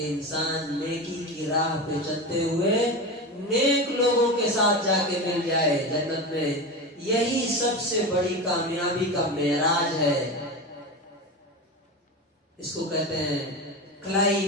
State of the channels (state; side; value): normal; both; correlation 0.23